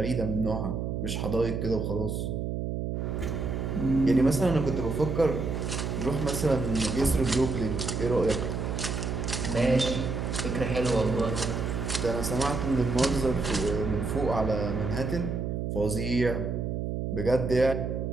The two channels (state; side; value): noise; right; hum, 2 dB below the sound